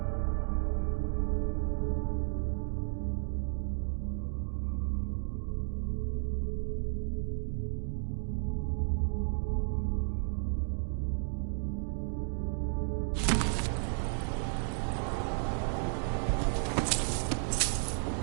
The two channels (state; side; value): silent; left; 56 dB below the other